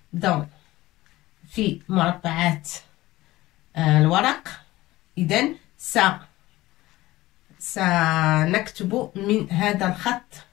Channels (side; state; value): right; quieter; 17.7 dB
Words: dans في مربعات الورق. إذن سنكتب من هذا الخط